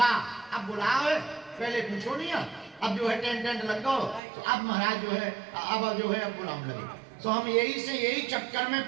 अब बुलाओ, पहले पूछो नहीं, अब जो है टेंट लगाओ, तो अब महाराज जो है अब बुलाने लगे। तो हम यही चक्कर में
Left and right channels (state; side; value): drops out; left; at 4.2 s